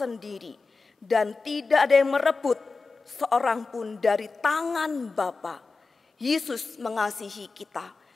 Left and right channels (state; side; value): quieter; right; 4.1 dB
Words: dan tidak ada yang merebut seorang pun dari tangan Bapa. Yesus mengasihi kita,